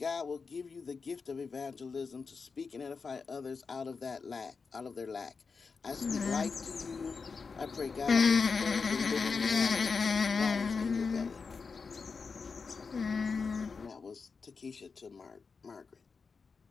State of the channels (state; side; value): quieter; right; 5.0 dB